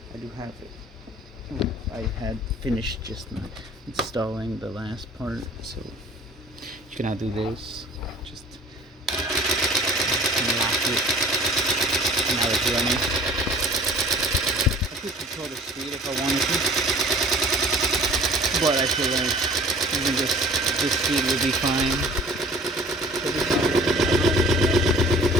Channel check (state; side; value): normal; both; correlation 0.48